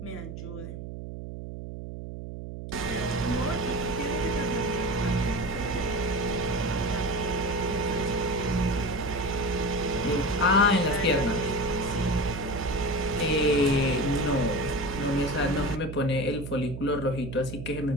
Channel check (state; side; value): noise; right; hum, 9 dB below the sound